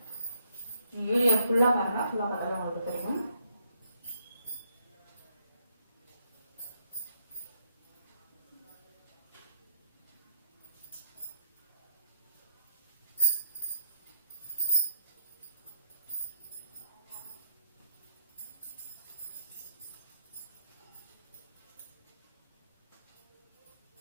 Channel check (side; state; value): both; inverted; correlation -0.71